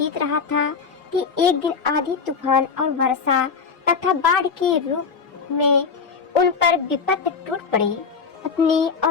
रहा था कि एक दिन आंधी, तूफान और वर्षा तथा बाढ़ के रूप में उन पर विपत्ति टूट पड़ी। पत्नी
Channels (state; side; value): quieter; right; 5.5 dB